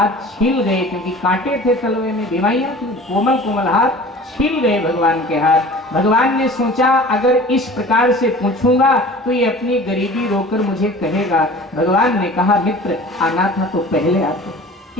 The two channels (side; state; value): both; normal; correlation 0.42